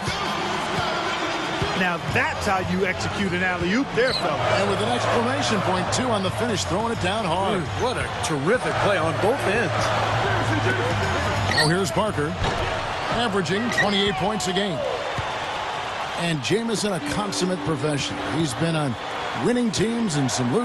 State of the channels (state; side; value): identical; both; correlation 1.00